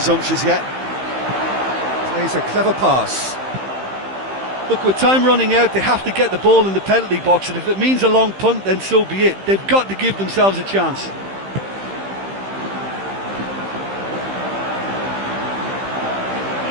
yet. Plays a clever pass. Look, with time running out, they have to get the ball in the penalty box, and if it means a long punt, then so be it. They've got to give themselves a chance.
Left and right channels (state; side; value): late; left; 15 ms